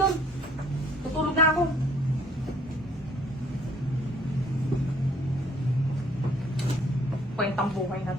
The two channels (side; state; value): both; normal; correlation 0.60